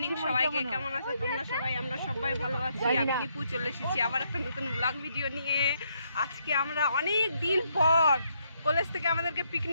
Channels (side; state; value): both; inverted; correlation -0.75